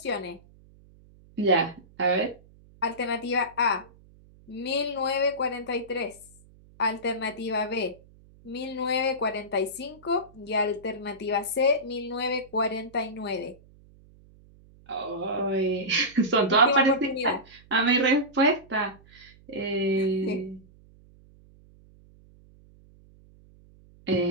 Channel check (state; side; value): noise; right; hum, 26 dB below the sound